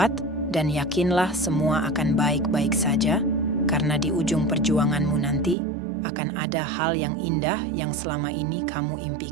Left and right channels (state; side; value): drops out; left; at 5.6 s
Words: dan yakinlah semua akan baik-baik saja, karena di ujung perjuanganmu nanti akan ada hal yang indah yang selama ini kamu